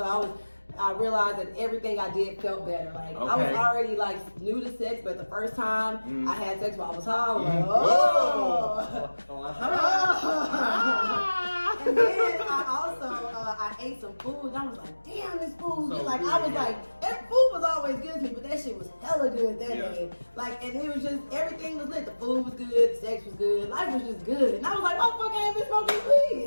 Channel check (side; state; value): both; inverted; correlation -1.00